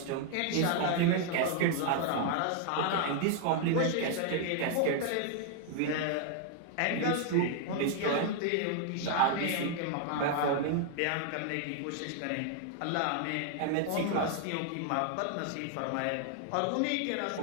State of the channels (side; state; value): both; different; correlation 0.00